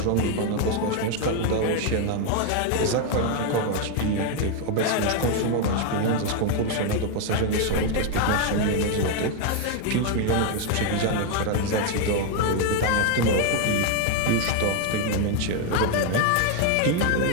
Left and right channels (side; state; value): both; different; correlation 0.01